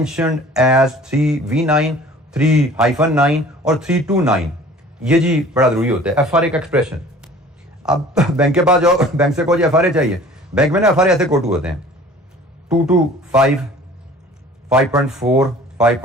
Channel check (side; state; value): both; normal; correlation 0.48